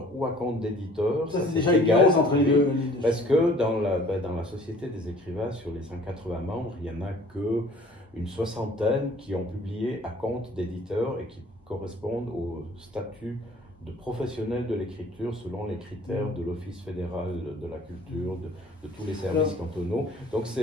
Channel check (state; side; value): normal; both; correlation 0.52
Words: ou à compte d'éditeur. Ça, c'est déjà égal entre les deux. Parce que dans la Société des écrivains, sur les 180 membres, il n'y en a qu'une soixantaine qui ont publié à compte d'éditeur et qui correspondent au statut de professionnels de l'écriture selon les critères de l'Office fédéral de la culture, de tous les services cantonaux. Donc